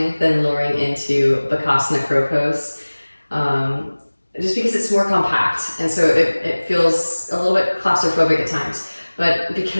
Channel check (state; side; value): inverted; both; correlation -1.00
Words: than lowering into Bakasana crow pose, just because it's more compact, and so it feels a little bit claustrophobic at times. But